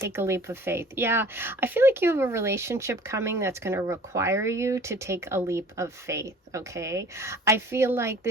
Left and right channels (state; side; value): normal; both; correlation 0.48